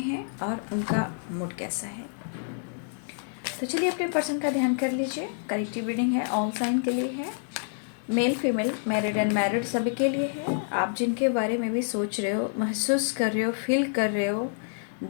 हैं और उनका मूड कैसा है। तो चलिए अपने पर्सन का ध्यान कर लीजिए। कलेक्टिव रीडिंग है, ऑल साइन के लिए है, मेल फीमेल, मैरिड अनमैरिड सभी के लिए है। आप जिनके बारे में भी सोच रहे हो, महसूस कर रहे हो, फील कर रहे हो,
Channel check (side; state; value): right; silent; digital silence